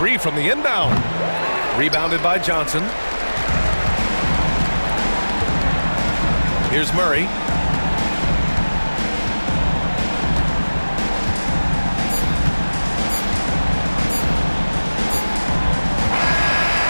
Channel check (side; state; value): both; inverted; correlation -1.00